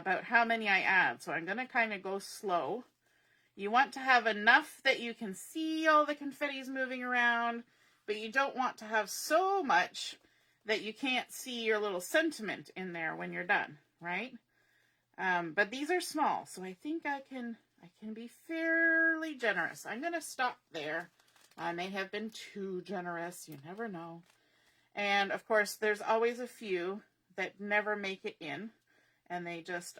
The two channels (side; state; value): both; identical; correlation 1.00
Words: how many I add. So I'm going to kind of go slow. You want to have enough that you can see all the confettis moving around, but you don't want to have so much that you can't see your little sentiment in there when you're done, right? But these are small, so I think I can be fairly generous. I'm going to stop there. I may have been too generous. You never know. And, of course, there's always a few that never make it in, and they just